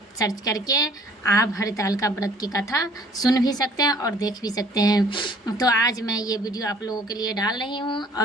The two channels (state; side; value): normal; both; correlation 0.55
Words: सर्च करके आप हरितालिका व्रत की कथा सुन भी सकते हैं और देख भी सकते हैं। तो आज मैं ये वीडियो आप लोगों के लिए डाल रही हूँ,